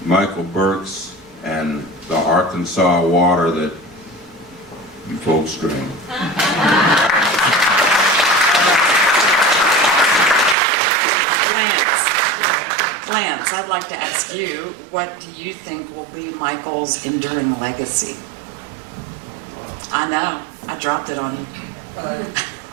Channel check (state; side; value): drops out; left; at 10.6 s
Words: Michael Burks and the Arkansas water that you folks drink. Lance, I'd like to ask you, what do you think will be Michael's enduring legacy? I know, I dropped it on you.